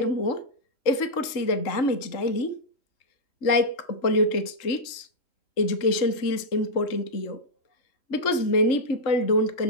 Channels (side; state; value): right; late; 3.7 ms